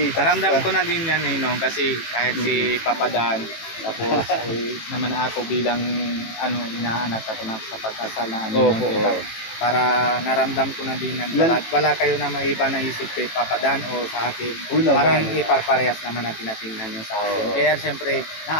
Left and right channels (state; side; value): late; right; 18 ms